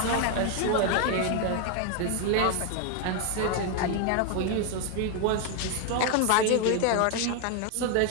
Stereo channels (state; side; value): different; both; correlation 0.01